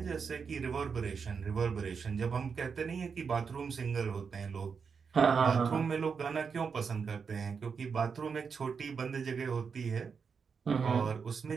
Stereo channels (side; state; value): left; quieter; 5.9 dB